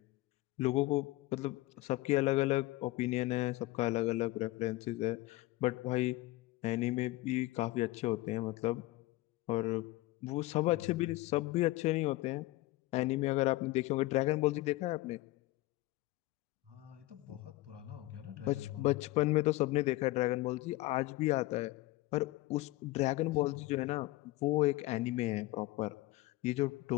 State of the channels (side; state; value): right; quieter; 19.0 dB